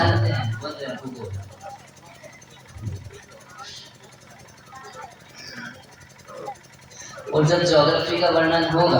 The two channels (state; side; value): identical; both; correlation 1.00